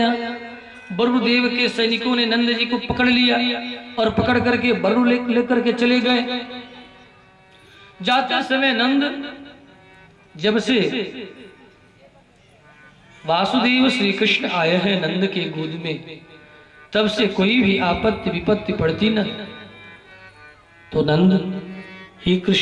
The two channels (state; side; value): identical; both; correlation 1.00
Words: वरुणदेव के सैनिकों ने नंद जी को पकड़ लिया और पकड़ करके वरुण लेकर के चले गए। जाते समय नंद जब से वासुदेव श्री कृष्ण आए हैं नंद के गोद में, तब से कोई भी आपत्ति विपत्ति पड़ती न, तो नंद हे